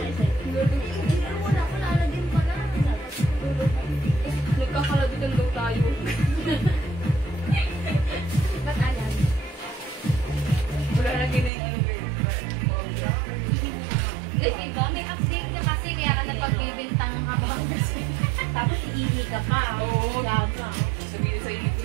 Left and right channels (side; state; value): left; drops out; at 11.5 s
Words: wala ko naalagin pa na. Nagkakaladitan daw tayo. Ba't alam? Wala lagi na yung ano ba yun. Diba, may update na kasi kaya ka napagbibintang ka ba? Tapos iihi ka pa. Oo. Sabihin sa inyo